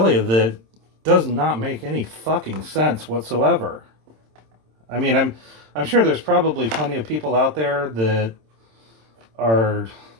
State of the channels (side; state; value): left; late; 27 ms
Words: that does not make any fucking sense whatsoever. I mean, I'm sure there's probably plenty of people out there that are